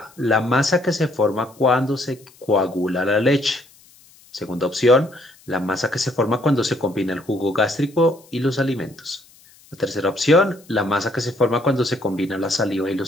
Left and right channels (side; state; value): left; noise; hiss, 27 dB below the sound